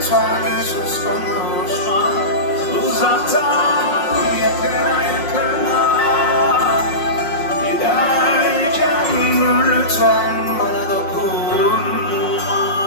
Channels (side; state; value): right; late; 5.6 ms